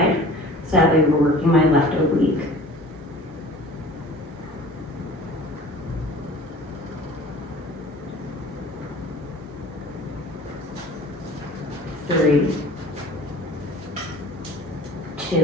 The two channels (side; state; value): both; normal; correlation 0.45